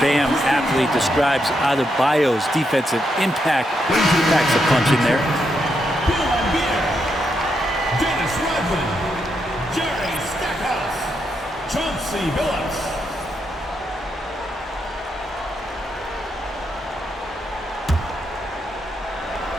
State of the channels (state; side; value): normal; both; correlation 0.81